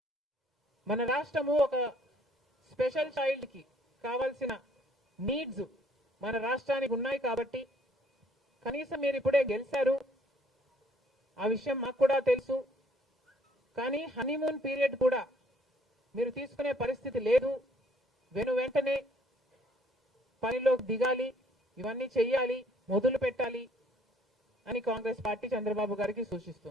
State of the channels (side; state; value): both; normal; correlation 0.63